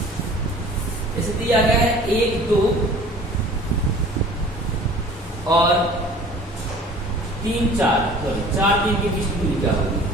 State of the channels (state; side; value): normal; both; correlation 0.47